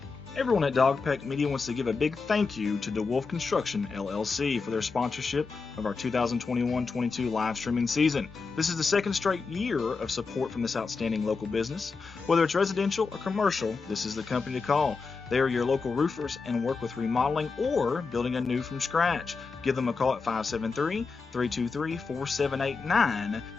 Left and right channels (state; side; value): quieter; right; 4.6 dB